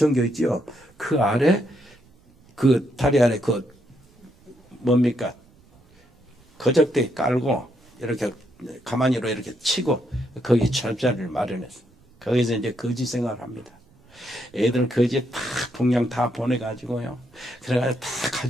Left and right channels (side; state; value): right; noise; rumble, 29 dB below the sound